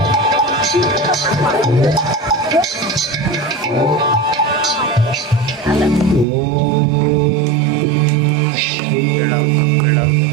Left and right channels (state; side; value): drops out; left; at 6.2 s